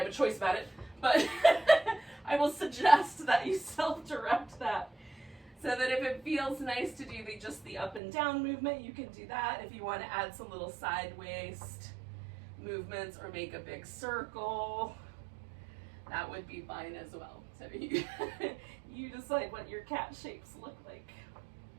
a choice about it, but I will suggest that you self-direct that. So that if it feels nice to do just the up and down movement, you can do that. If you want to add some little side waist movements or make a big circle, that would be fine as well. So you decide what your cat shapes look like.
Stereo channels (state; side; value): drops out; left; at 8.0 s